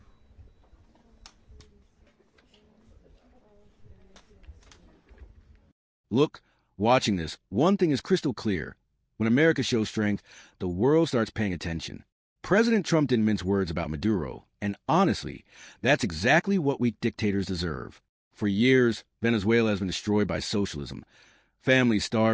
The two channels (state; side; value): identical; both; correlation 1.00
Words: Look, watching this, one thing is crystal clear. When America shows strength, the world starts paying attention. President Trump didn't mince words about Maduro, and honestly, that's exactly what weak dictators deserve. For years, Venezuela has been destroyed by socialism. Families